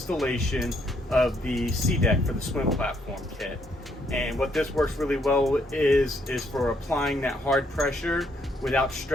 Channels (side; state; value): both; normal; correlation 0.71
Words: of the SeaDek for the swim platform kit. And what this works really well is for applying that hard pressure without